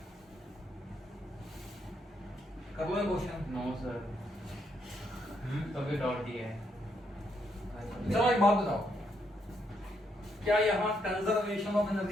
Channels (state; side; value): normal; both; correlation 0.76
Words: कर लो क्वेश्चन। नो सर, तभी डॉट दिया है। चलो एक बात बताओ, क्या यहाँ कंजर्वेशन ऑफ